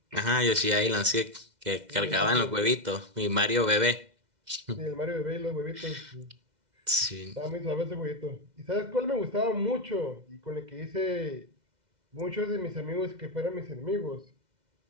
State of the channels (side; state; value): left; late; 2.1 ms